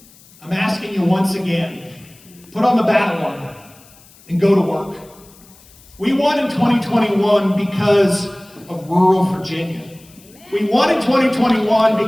I'm asking you once again, put on the battle armor and go to work. We won in 2021 because of rural Virginia. We won in 2021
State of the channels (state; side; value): noise; left; hiss, 26 dB below the sound